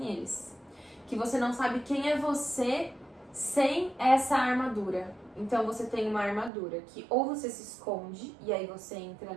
eles. Que você não sabe quem é você sem essa armadura. Então você tem uma armadura que ou você se esconde e aí você entra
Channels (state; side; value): drops out; left; at 6.5 s